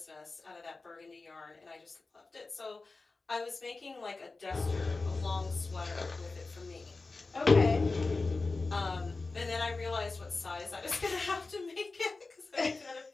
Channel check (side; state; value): right; quieter; 3.7 dB